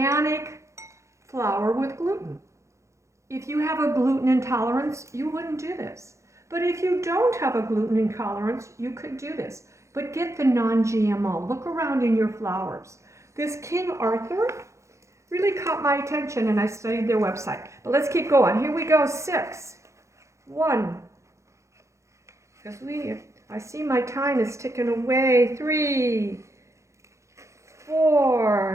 flour with gluten. If you have a gluten intolerance, you wouldn't do this. But if you don't have a gluten intolerance, you could do this. But get the non-GMO. Look around in your flours. This King Arthur really caught my attention and I studied their website. But let's keep going. Here we go, 6. 1. Because I see my time is ticking away. 3,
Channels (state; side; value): late; left; 0.14 ms